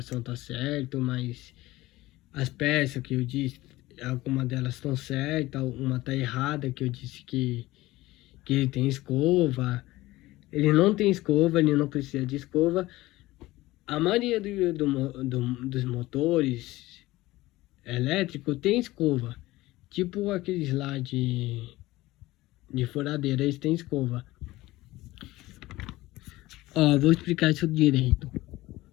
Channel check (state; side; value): quieter; right; 18.3 dB